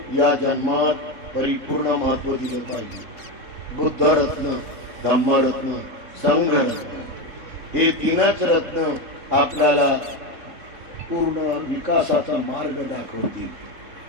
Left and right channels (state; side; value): late; left; 3.6 ms